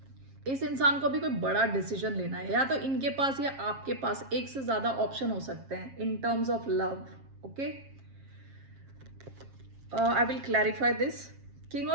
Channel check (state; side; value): late; left; 7.4 ms